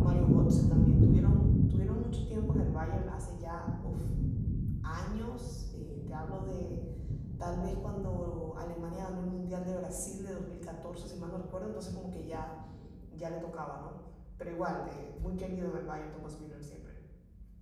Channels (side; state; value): both; identical; correlation 1.00